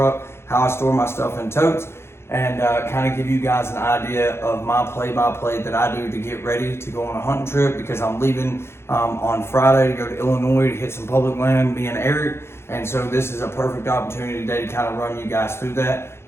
how I store my stuff in totes, and kind of give you guys an idea of my play-by-play that I do to get ready to go on a hunting trip, because I'm leaving on Friday to go to Illinois to hit some public land, me and Eric. And so this is a perfect opportunity today to kind of run you guys through that.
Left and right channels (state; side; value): late; right; 0.12 ms